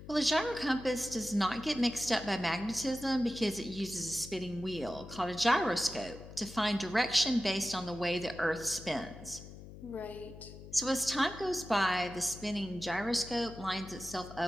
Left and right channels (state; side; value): noise; left; hum, 15 dB below the sound